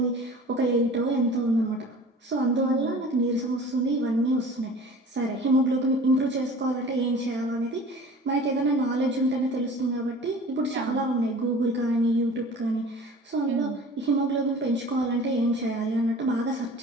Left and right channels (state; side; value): normal; both; correlation 0.43